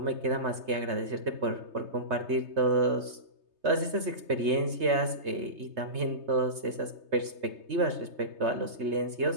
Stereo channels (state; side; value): late; left; 3.3 ms